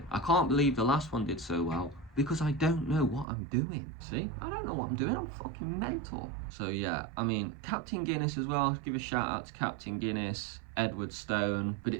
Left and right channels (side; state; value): left; drops out; at 3.2 s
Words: I can't believe the last one did so well, because I don't know what I'm doing. See? I don't know what I'm doing. I'm fucking mental. So yeah, I mean, Captain Guinness as well. Give a shout out to Captain Guinness, Edward Stone, but